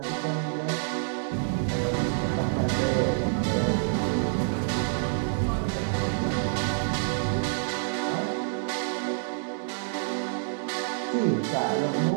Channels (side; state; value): left; silent; digital silence